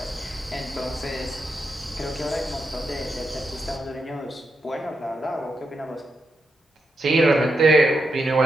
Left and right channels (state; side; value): normal; both; correlation 0.85